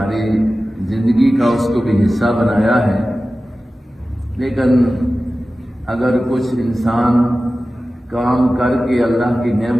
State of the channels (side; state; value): both; normal; correlation 0.95